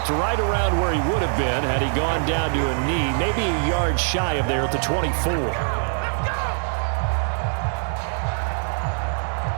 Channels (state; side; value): silent; left; digital silence